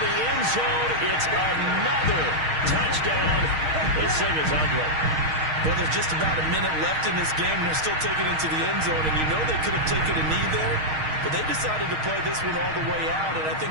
end zone. It's another touchdown. This thing is ugly. Well, there's just about a minute left in this game, and they're still taking it into the end zone. And you know they could have taken a knee there, but they decided to play this one all the way out. And I think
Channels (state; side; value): late; left; 6.4 ms